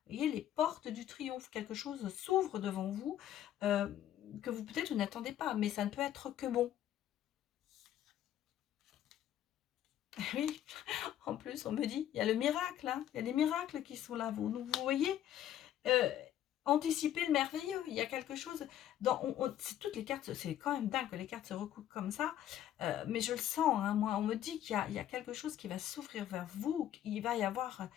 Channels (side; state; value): right; quieter; 11.5 dB